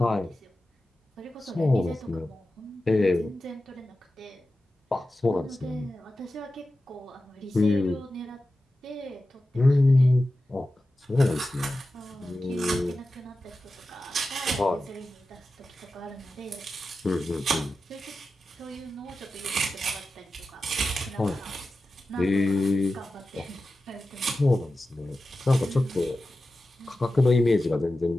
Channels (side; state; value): both; normal; correlation 0.93